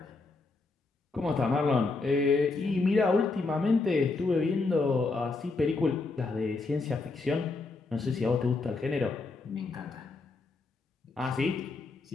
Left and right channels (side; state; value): right; quieter; 3.7 dB